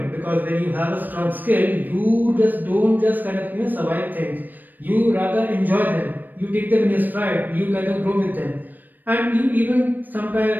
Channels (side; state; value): left; late; 0.089 ms